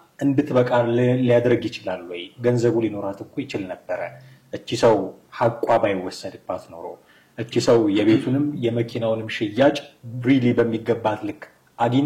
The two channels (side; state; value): both; identical; correlation 1.00